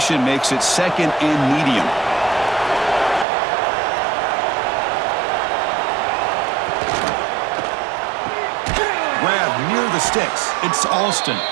makes it 2nd and medium. Grab near the sticks. It's Alston.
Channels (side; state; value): left; drops out; at 3.2 s